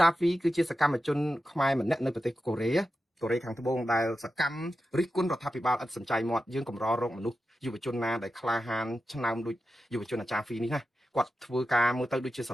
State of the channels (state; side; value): normal; both; correlation 0.92